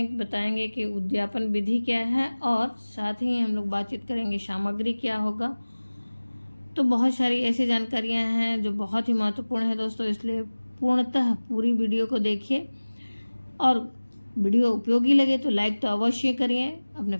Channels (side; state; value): both; inverted; correlation -1.00